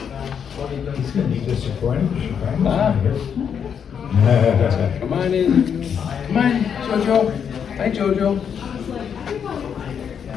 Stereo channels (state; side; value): quieter; right; 7.6 dB